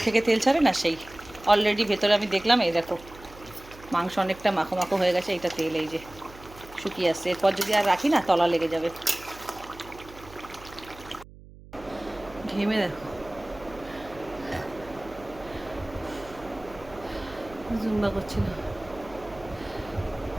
থেকে তেল ছাড়ে না, সেই অলরেডি ভেতরে আমি দেখলাম। এই দেখো মাংস অনেকটা মাখো মাখো হয়ে গেছে, এটা তেল এই যে শুকিয়ে আসছে, এরপর যদি আর রাখি না তলা লেগে যাবে। ঘেমে দেখো, জুম্বা করছিল,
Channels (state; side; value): noise; right; hum, 19 dB below the sound